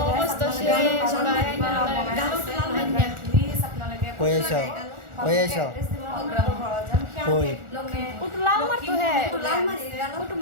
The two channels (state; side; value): late; left; 1.4 ms